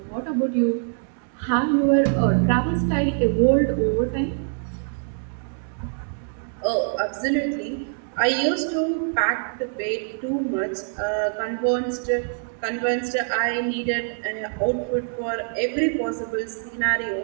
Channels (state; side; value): silent; left; 62 dB below the other